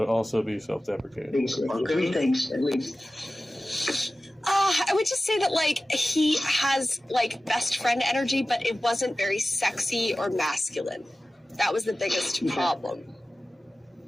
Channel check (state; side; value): normal; both; correlation 0.95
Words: also be self-deprecating. Three things, at least. I would just say that he has best friend energy, but it wasn't very sexy or masculine. That was the biggest problem.